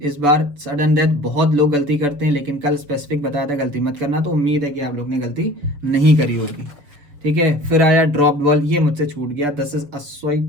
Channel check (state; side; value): late; left; 7.0 ms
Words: इस बार सडन डेथ बहुत लोग गलती करते हैं, लेकिन कल स्पेसिफिक बताया था गलती मत करना, तो उम्मीद है कि आप लोग ने गलती नहीं करी होगी, ठीक है। फिर आया ड्रॉप बॉल, ये मुझसे छूट गया, this is a